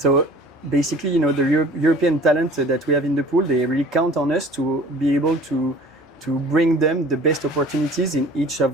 basically, the European talent that we have in the pool, they really count on us to be able to bring them the best opportunities in each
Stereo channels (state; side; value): normal; both; correlation 0.47